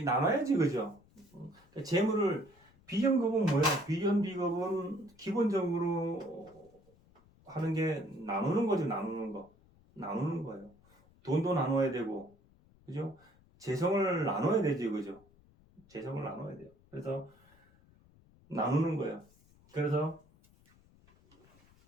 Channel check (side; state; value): left; noise; rumble, 29 dB below the sound